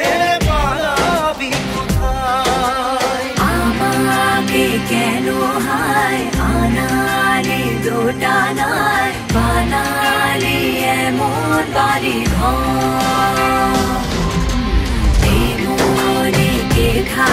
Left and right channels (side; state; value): both; identical; correlation 1.00